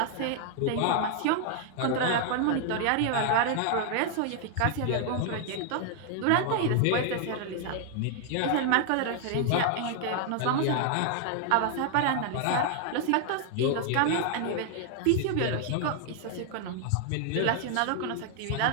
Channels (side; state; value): both; different; correlation 0.00